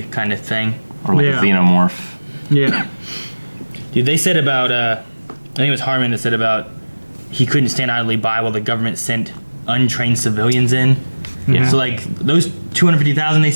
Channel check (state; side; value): inverted; both; correlation -1.00